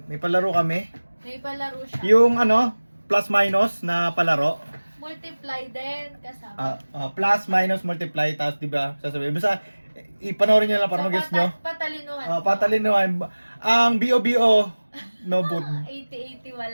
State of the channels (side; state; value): both; inverted; correlation -1.00